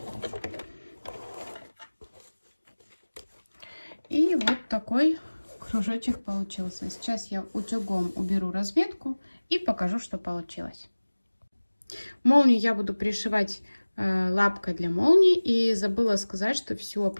И вот такой кружочек получился. Сейчас я утюгом уберу разметку и покажу, что получилось. Молнию я буду пришивать лапкой для молнии, и забыла сказать, что всю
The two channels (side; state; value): both; inverted; correlation -1.00